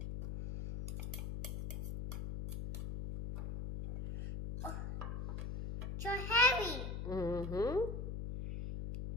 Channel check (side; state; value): left; noise; hum, 5 dB below the sound